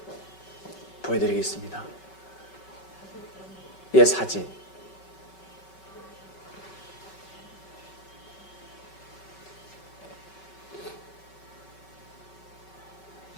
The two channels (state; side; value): late; right; 5.3 ms